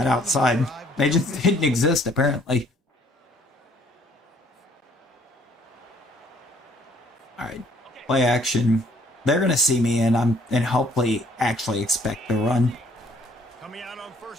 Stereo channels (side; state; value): both; normal; correlation 0.61